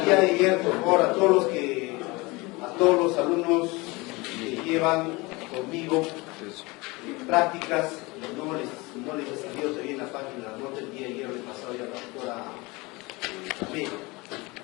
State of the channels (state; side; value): quieter; right; 24.2 dB